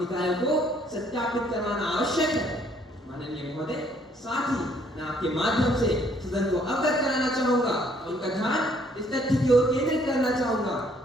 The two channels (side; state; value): both; normal; correlation 0.64